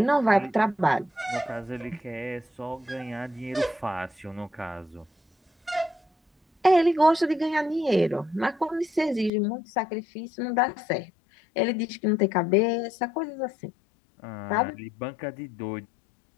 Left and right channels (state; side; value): drops out; right; at 9.3 s